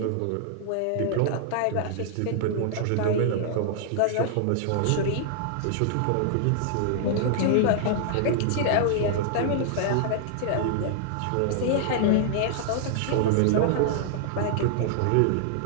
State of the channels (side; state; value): both; different; correlation -0.01